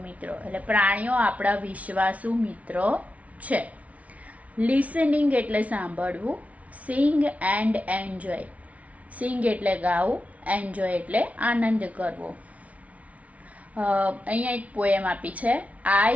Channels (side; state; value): left; late; 0.067 ms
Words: મિત્રો, એટલે પ્રાણીઓ આપણા વિશ્વાસુ મિત્રો છે. લિસનિંગ એટલે સાંભળવું, સિંગ એન્ડ એન્જોય. સિંગ એટલે ગાવું, એન્જોય એટલે આનંદ કરવો. અહીંયા એક પોએમ આપી છે,